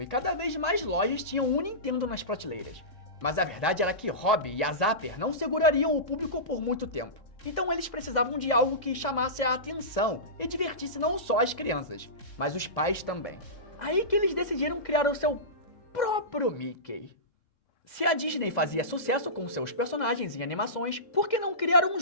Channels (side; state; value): right; late; 3.7 ms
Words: e cada vez mais lojas tinham um Nintendo nas prateleiras. Mas a verdade era que Robbie e a Zapper não segurariam o público por muito tempo. Então eles precisavam de algo que chamasse a atenção e divertisse não só as crianças, mas os pais também. Aí que eles decidiram criar o seu próprio Mickey. Se a Disney fazia sucesso com seus personagens em animações, por que não criar um